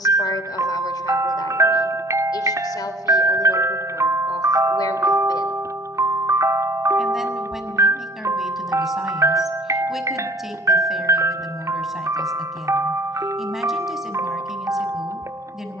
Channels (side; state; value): both; normal; correlation 0.50